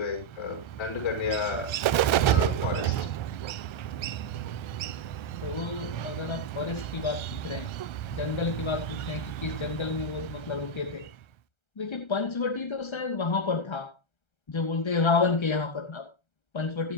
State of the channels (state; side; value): late; right; 1.3 ms